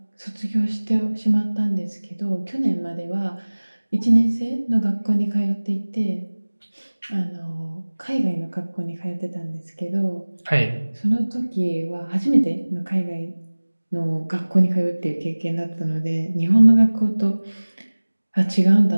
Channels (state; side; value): inverted; both; correlation -1.00